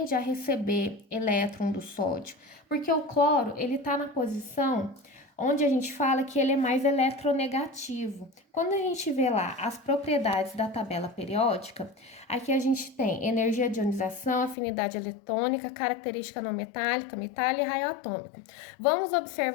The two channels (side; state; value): right; drops out; at 14.6 s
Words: a receber elétron do sódio? Porque o cloro ele está na posição onde a gente fala que ele é mais eletronegativo. Quando a gente vê lá as propriedades da tabela periódica, aqui a gente tem energia de ionização, afinidade eletrônica, característica não metálica, metal e raio atômico. Vamos